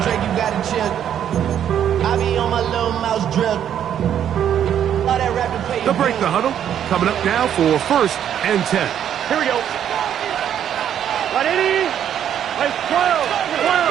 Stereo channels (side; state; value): left; quieter; 9.7 dB